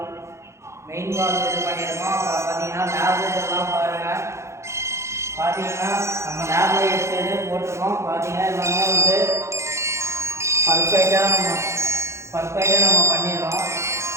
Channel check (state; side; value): late; left; 0.14 ms